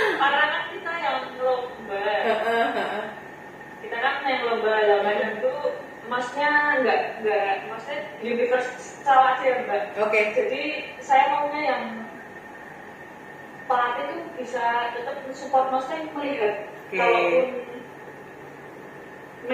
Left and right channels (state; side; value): identical; both; correlation 1.00